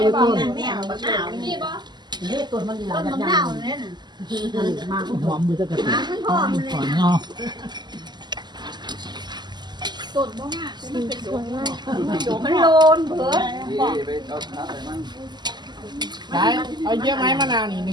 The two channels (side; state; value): left; late; 0.21 ms